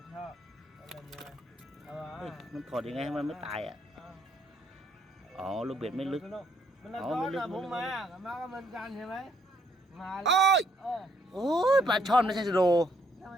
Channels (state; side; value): normal; both; correlation 0.70